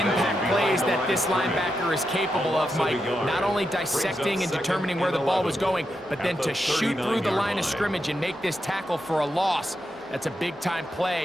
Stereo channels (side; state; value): both; normal; correlation 0.86